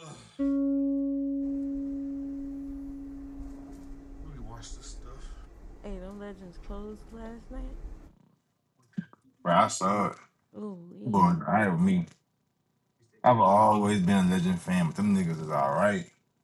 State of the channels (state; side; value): identical; both; correlation 1.00